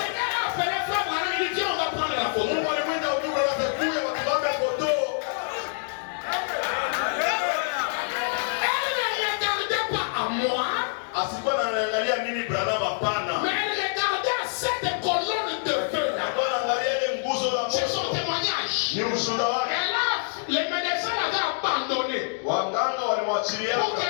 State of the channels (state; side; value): silent; right; digital silence